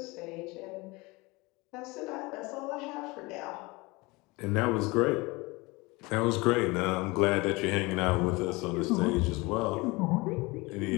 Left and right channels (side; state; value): right; quieter; 24.2 dB